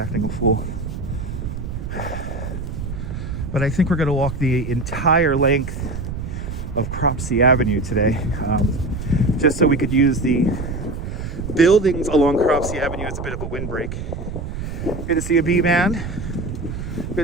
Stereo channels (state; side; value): noise; right; rumble, 6 dB below the sound